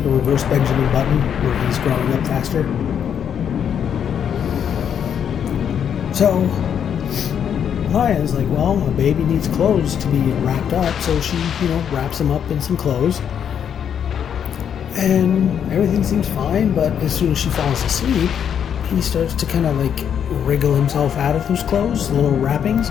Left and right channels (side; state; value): right; quieter; 8.4 dB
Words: a reverse Benjamin Button, where he's growing up faster. So, Maya's like, well, a baby needs clothes to be wrapped up, so she, wraps him up in some clothes. And everything seems fine, but as soon as she falls asleep, he starts to kind of wriggle himself out of those clothes, little